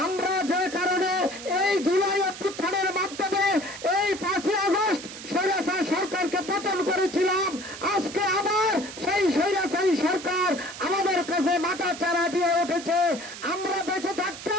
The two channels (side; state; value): right; noise; hiss, 12 dB below the sound